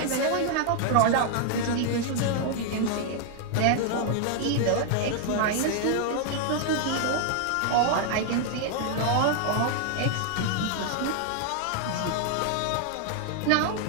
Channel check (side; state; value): both; different; correlation 0.00